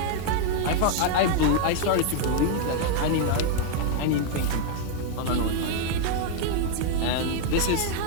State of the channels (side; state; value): both; different; correlation 0.00